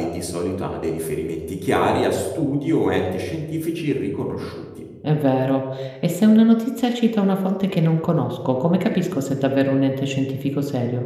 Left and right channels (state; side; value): identical; both; correlation 1.00